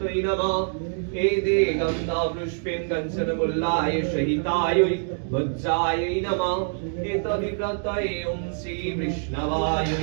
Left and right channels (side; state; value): left; silent; 62 dB below the other